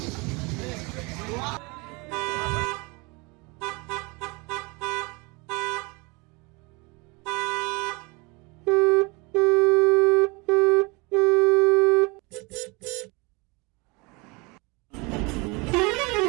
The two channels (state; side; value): quieter; left; 27.4 dB